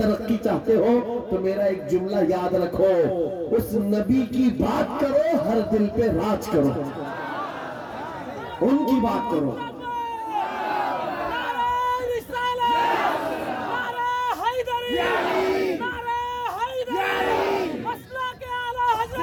چاہتے ہو تو میرا ایک جملہ یاد رکھو، اس نبی کی بات کرو، ہر دل پہ راج کرو، ان کی بات کرو۔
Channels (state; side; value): identical; both; correlation 1.00